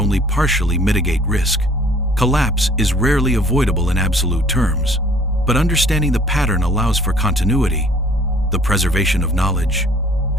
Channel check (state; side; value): normal; both; correlation 0.55